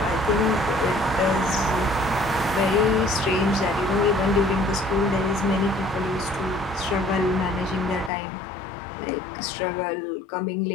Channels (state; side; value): drops out; right; at 8.1 s